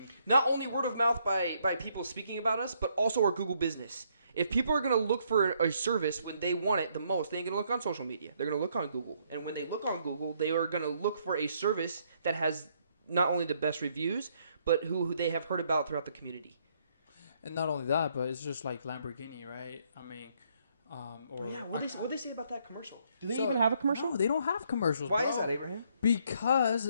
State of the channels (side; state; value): both; inverted; correlation -0.70